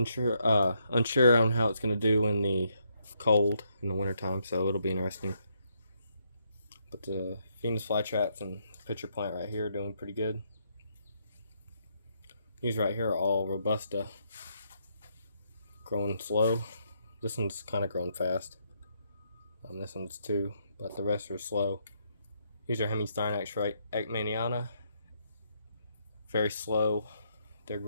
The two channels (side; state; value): both; inverted; correlation -0.75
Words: on how it's going to do in the cold in the wintertime, so it'll be interesting. But the Venus flytraps and pitcher plant right here doing pretty good. These right here are all Robusta, growing slow. This one's kind of growing fast. This one's too, but the rest are slow. These are Hemistynax right, Ekmaniana. Very slow. They're